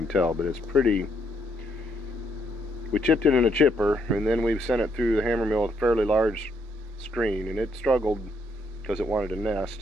tell, but it's pretty. We chipped it in a chipper, and then we've sent it through the Hammermill with a fairly large screen, and it struggled because it wanted to nest.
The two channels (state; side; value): normal; both; correlation 0.73